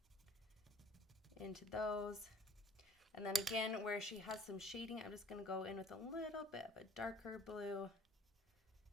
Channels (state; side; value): normal; both; correlation 0.49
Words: into those. And then again, where she has some shading, I'm just going to go in with a little bit of a darker blue